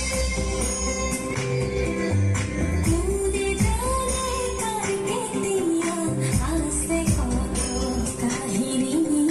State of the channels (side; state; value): both; identical; correlation 1.00